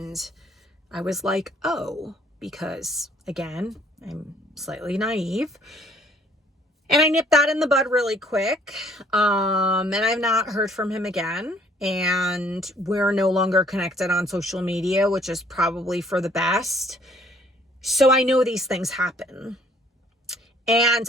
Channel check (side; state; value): both; normal; correlation 0.61